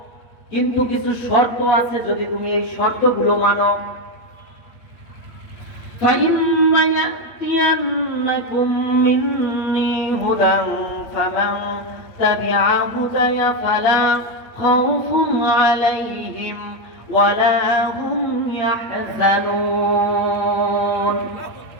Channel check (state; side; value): late; right; 8.4 ms